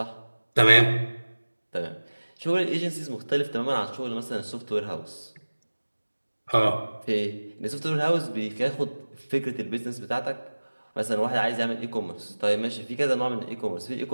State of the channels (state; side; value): inverted; both; correlation -1.00